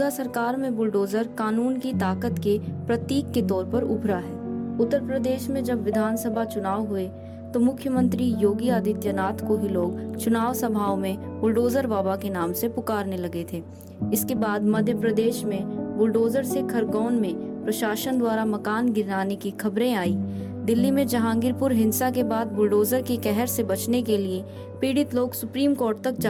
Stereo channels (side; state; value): both; identical; correlation 1.00